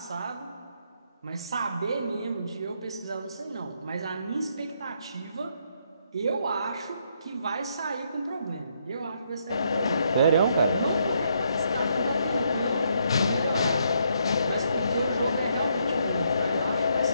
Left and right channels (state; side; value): inverted; both; correlation -0.75